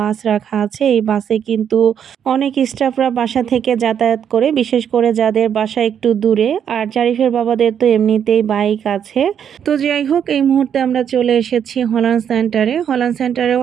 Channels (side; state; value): left; quieter; 8.5 dB